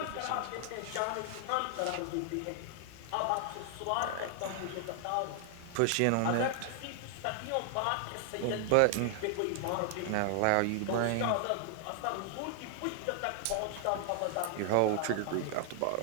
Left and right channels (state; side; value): different; both; correlation 0.00